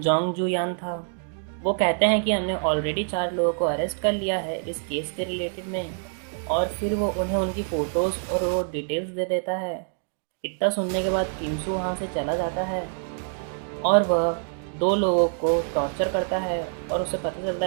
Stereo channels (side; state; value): left; silent; digital silence